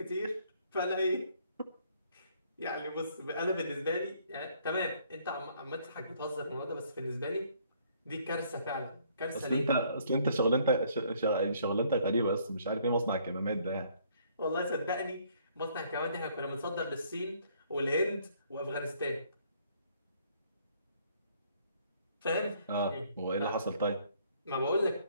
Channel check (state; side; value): inverted; both; correlation -0.64